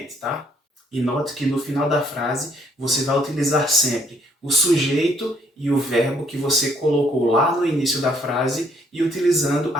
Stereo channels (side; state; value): both; normal; correlation 0.65